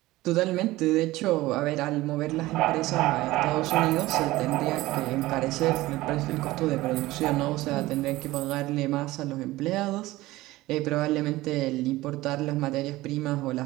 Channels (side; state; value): left; quieter; 18.1 dB